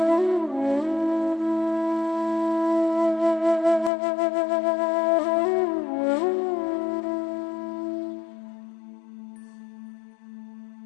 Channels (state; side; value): drops out; right; at 3.9 s